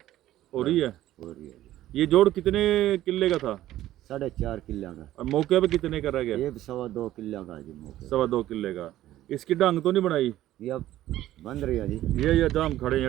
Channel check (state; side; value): quieter; left; 14.0 dB